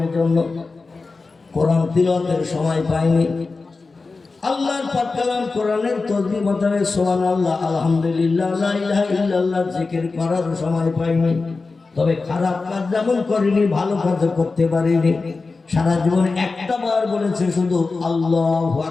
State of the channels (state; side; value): quieter; right; 4.0 dB